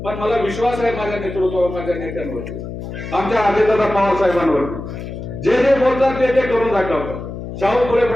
पण मला विश्वास आहे माझ्या नेतृत्वावर, माझ्या नेत्यांवरती, आमच्या अजितदादा पवार साहेबांवरती. जे जे बोलतात ते करून दाखवतात. शाहू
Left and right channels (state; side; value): noise; left; hum, 9 dB below the sound